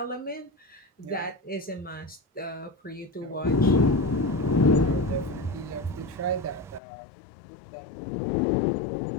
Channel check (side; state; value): right; drops out; at 6.8 s